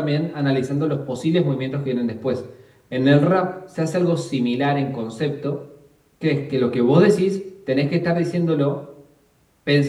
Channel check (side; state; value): both; identical; correlation 1.00